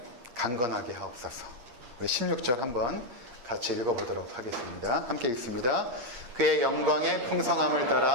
강건하게 하옵소서. 우리 16절 한번 같이 읽어보도록 하겠습니다. 함께 읽습니다. 그의 영광의 풍성함을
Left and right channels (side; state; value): left; late; 8.5 ms